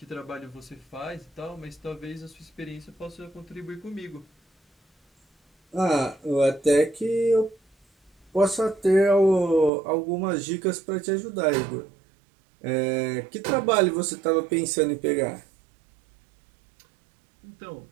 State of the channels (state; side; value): drops out; left; at 9.7 s